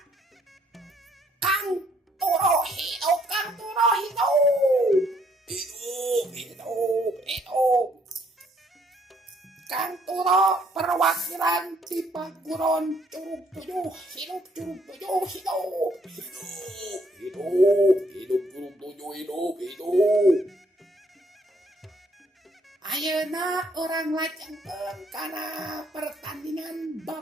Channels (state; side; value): normal; both; correlation 0.67